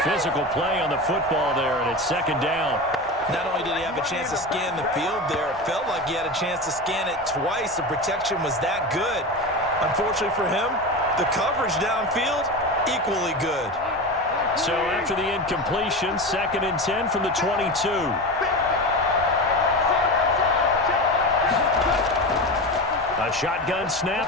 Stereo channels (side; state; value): both; normal; correlation 0.24